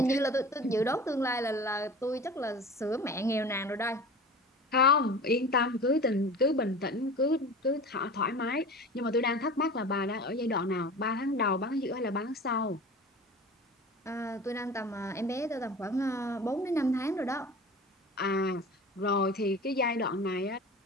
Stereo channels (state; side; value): normal; both; correlation 0.36